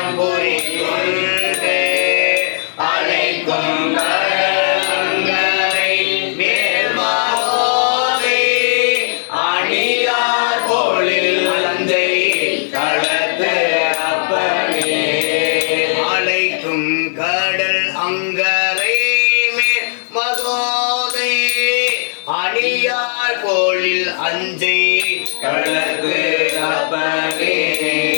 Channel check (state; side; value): silent; right; digital silence